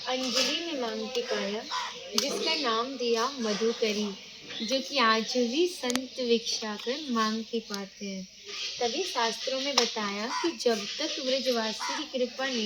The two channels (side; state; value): both; identical; correlation 1.00